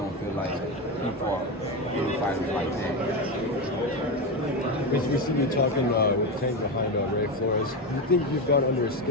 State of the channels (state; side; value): normal; both; correlation 0.14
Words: feel like he fought any fighters like that. We see you talking with Tank behind Ray Flores. Do you think you've got under his